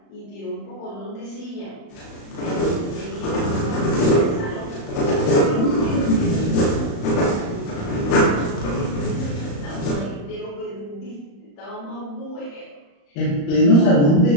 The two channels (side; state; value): right; late; 35 ms